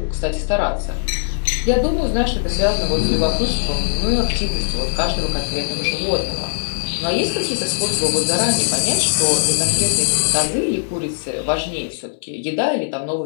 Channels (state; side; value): silent; right; digital silence